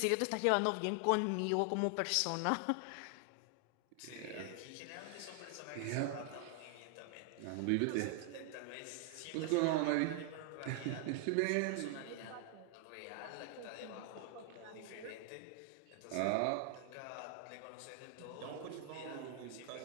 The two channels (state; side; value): different; both; correlation 0.00